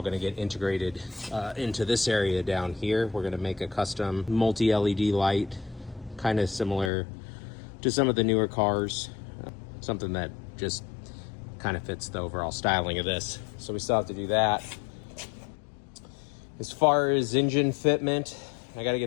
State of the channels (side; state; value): right; drops out; at 6.9 s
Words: going to get integrated into this area down here. We're going to make a custom multi-LED light, kind of similar to some of the newer cars, something that just kind of fits the overall styling of this. So we still have to do that. As far as engine fitment, I got to